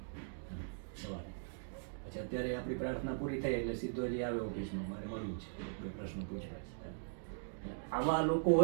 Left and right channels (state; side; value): silent; left; digital silence